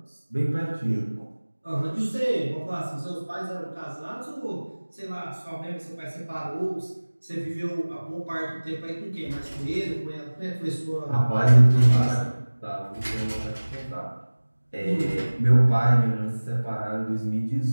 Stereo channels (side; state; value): both; inverted; correlation -1.00